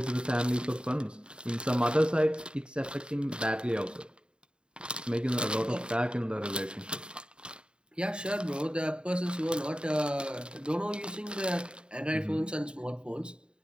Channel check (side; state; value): left; late; 0.051 ms